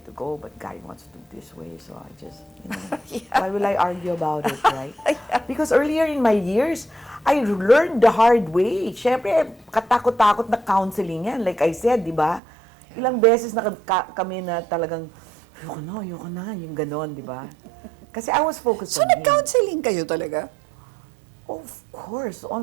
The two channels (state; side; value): drops out; left; at 12.4 s